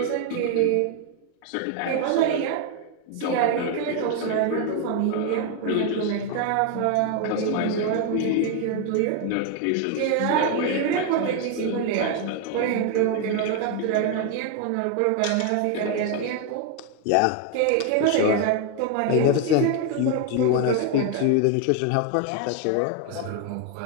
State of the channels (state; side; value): different; both; correlation 0.00